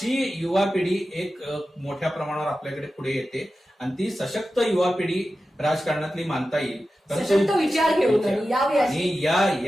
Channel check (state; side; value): normal; both; correlation 0.93